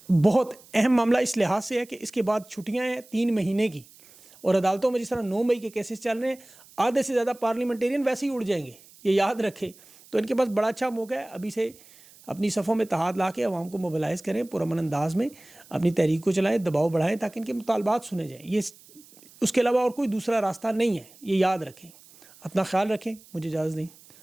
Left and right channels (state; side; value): noise; right; hiss, 24 dB below the sound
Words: بہت اہم معاملہ اس لحاظ سے ہے کہ اس کے بعد چھٹیاں ہیں 3 مہینے کی، اور عدالتوں میں جس طرح 9 مئی کے کیسز چل رہے ہیں، آدھے سے زیادہ پارلیمنٹیرین ویسے ہی اڑ جائیں گے، یہ یاد رکھیں، تو ان کے پاس بڑا اچھا موقع ہے ابھی سے اپنی صفوں میں اتحاد لا کے عوام کو موبلائز کریں، پرامن انداز میں اپنی تحریک کو چلائیں، دباؤ بڑھائیں تاکہ ان کے مطالبات سنے جائیں، یہ اس کے علاوہ اور کوئی دوسرا راستہ نہیں ہے، یہ یاد رکھیں۔ اپنا خیال رکھیں، مجھے اجازت دیں،